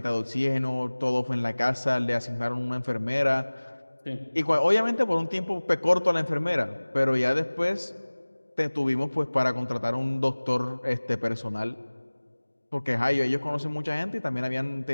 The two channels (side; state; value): both; inverted; correlation -1.00